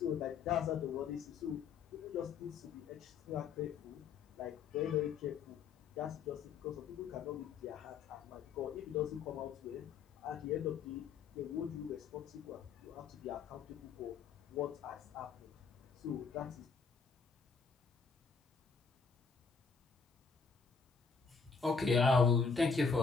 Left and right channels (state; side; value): quieter; right; 5.6 dB